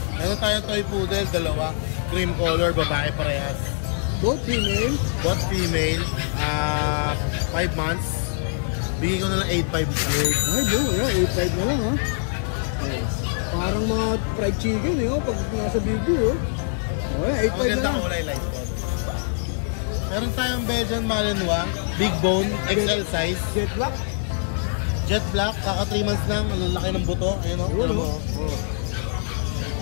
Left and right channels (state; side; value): silent; right; digital silence